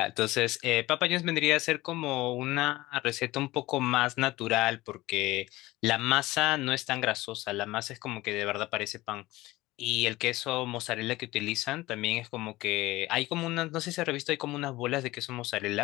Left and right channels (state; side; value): quieter; right; 18.6 dB